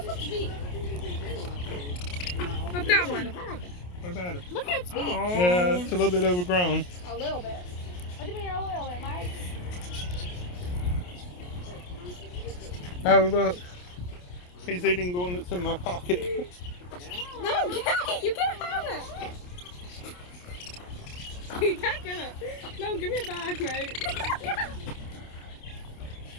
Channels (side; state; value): right; late; 28 ms